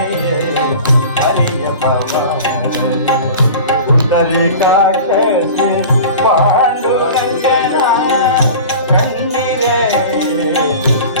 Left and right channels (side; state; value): both; inverted; correlation -0.37